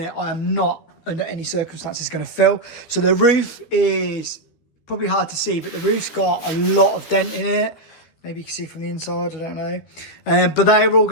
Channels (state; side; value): late; right; 13 ms